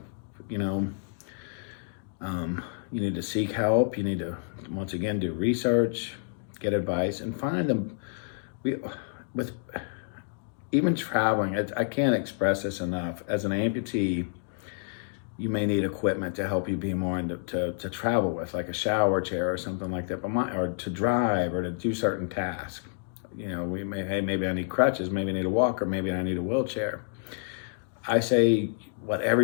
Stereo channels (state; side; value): silent; right; digital silence